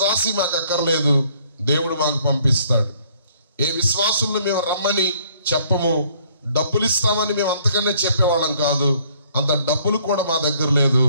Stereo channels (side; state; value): both; inverted; correlation -0.62